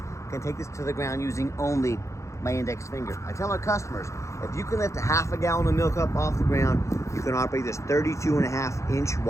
can take this to the ground using only my index finger. I tell our customers, if you can lift a half a gallon of milk up off the ground, you can operate this 32.5-inch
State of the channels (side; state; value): right; late; 0.14 ms